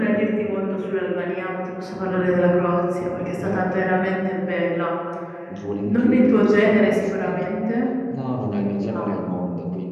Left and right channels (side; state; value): both; identical; correlation 1.00